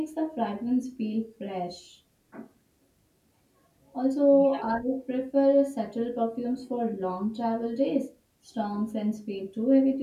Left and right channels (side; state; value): both; identical; correlation 1.00